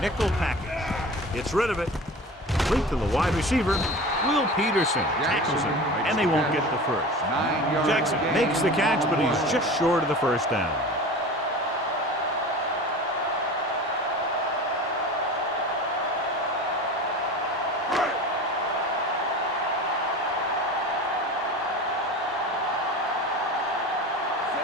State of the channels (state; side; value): normal; both; correlation 0.34